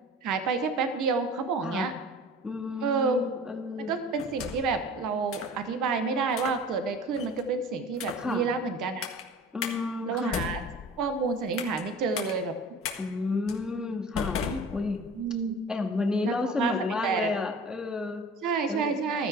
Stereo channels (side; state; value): both; normal; correlation 0.41